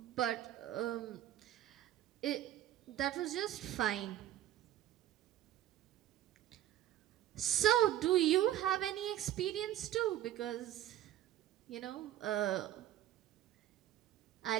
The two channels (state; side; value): quieter; left; 12.6 dB